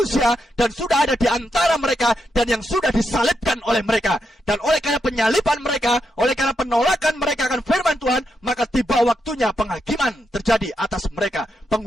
dan sudah ada di antara mereka, dan yang sudah disalibkan oleh mereka. Dan oleh karena penyaliban mereka, oleh karena penolakan mereka akan firman Tuhan, maka tiba waktunya penghakiman terjadi atas mereka.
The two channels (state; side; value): normal; both; correlation 0.83